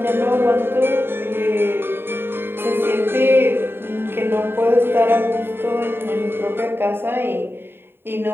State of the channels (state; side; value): late; left; 0.11 ms